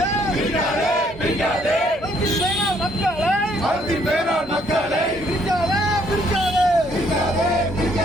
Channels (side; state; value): both; normal; correlation 0.67